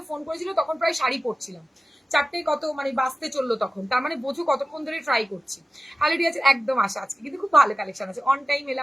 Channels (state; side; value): normal; both; correlation 0.95